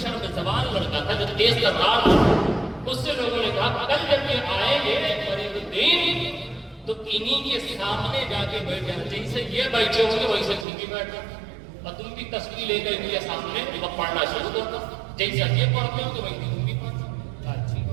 شرم زبان لڑکا تھا جو تیز ترار تھا، اس سے لوگوں نے کہا کل جب یہ آئیں گے فرید الدین تو انہی کے سامنے جا کے بیٹھ جانا، جیسے یہ بیٹھے ہوں گے ویسے تم بھی بیٹھنا، اور تم بھی تصویر لے کر کے سامنے وہ پڑھنا شروع کرتا، جیسا یہ پڑھتے ہو تو ویسے تم بھی پڑھنا۔ اچھی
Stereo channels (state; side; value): drops out; left; at 10.7 s